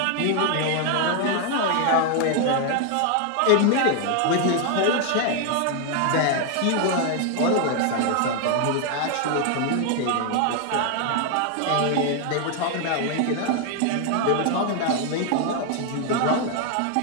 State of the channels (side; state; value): both; different; correlation 0.00